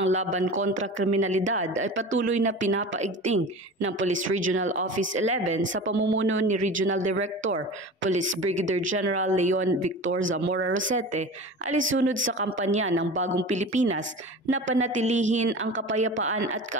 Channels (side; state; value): both; normal; correlation 0.34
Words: laban kontra kriminalidad ay patuloy na pinapaigting ng Police Regional Office 11 sa pamumuno ni Regional Director, Police Brigadier General Leon Victor Zamora Rosete, alisunod sa kampanya ng Bagong Pilipinas na panatilihin ang kapayapaan at